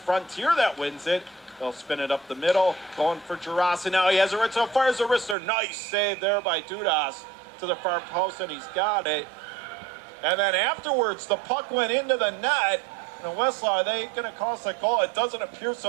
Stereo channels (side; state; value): left; drops out; at 5.4 s